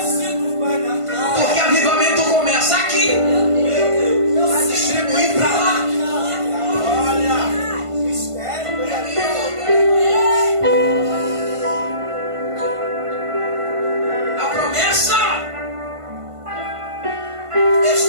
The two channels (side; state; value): left; late; 1.5 ms